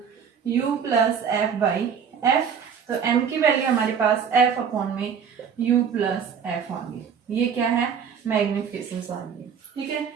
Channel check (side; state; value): left; quieter; 7.1 dB